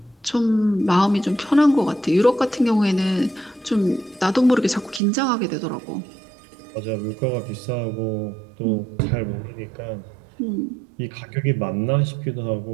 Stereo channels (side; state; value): left; drops out; at 5.0 s